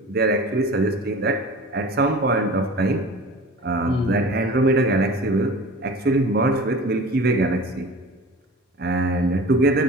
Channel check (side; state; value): both; normal; correlation 0.39